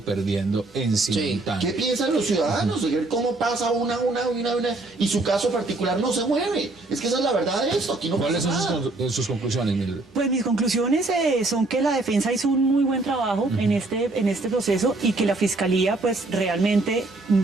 perdiendo en simultáneo. ¿Qué piensan los ciudadanos? ¿Cómo pasa una y su caso particular no se mueve? Es que esa es la verdad de esto. Aquí no ¿Cuáles pasa son nada. sus conclusiones, Mildred? Pues mis conclusiones son que la defensa hizo un muy buen trabajo en este proceso y que la fiscalía pues realmente,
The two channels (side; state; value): left; quieter; 3.1 dB